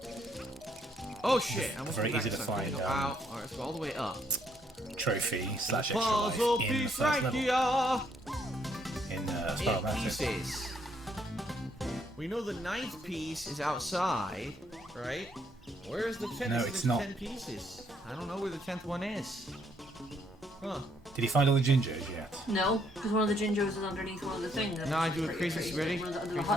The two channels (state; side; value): normal; both; correlation 0.71